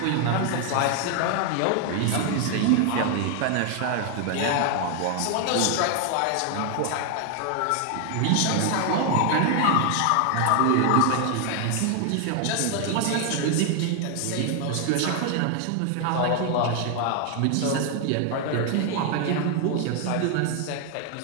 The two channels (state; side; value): different; both; correlation 0.00